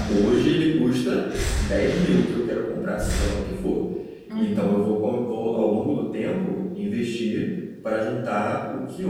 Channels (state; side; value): identical; both; correlation 1.00